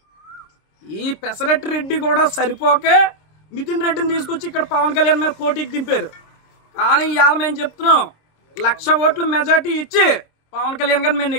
ఈ పెసరెట్టు రెడ్డి కూడా సరిపోకే మిథున్ రెడ్డిని తీసుకొచ్చి ఇక్కడ పవన్ కళ్యాణ్ మీద పోటీకి దింపారు. కానీ ఇవాళ మేము చెప్తున్నాం 1,00,000 ఓట్లు మెజార్టీ ఇచ్చి పవన్ కళ్యాణ్ గారిని మేము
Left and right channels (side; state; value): right; late; 26 ms